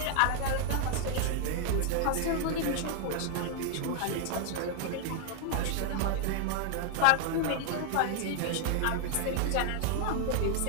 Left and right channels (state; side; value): different; both; correlation 0.00